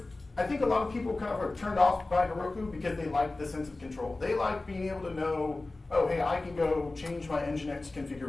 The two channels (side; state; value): right; quieter; 3.1 dB